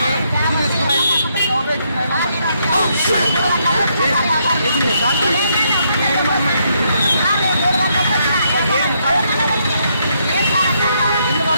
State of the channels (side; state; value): both; inverted; correlation -0.75